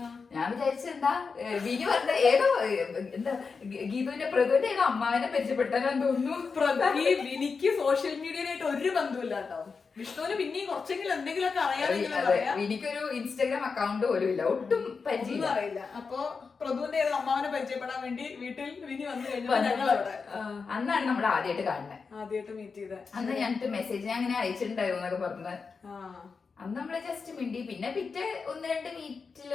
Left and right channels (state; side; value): quieter; right; 5.0 dB